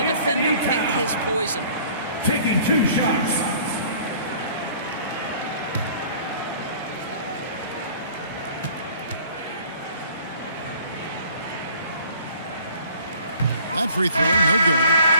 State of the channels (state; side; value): inverted; both; correlation -0.52